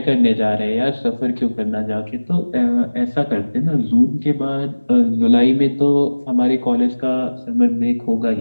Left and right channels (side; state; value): both; inverted; correlation -1.00